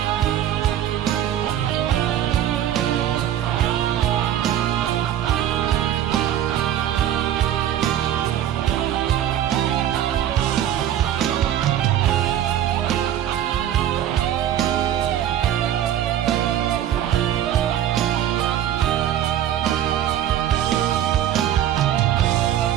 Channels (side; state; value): left; quieter; 11.2 dB